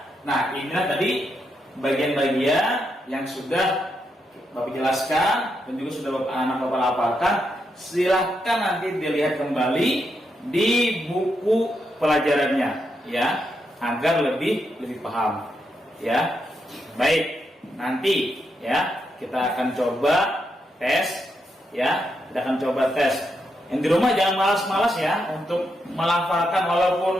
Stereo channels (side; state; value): both; normal; correlation 0.82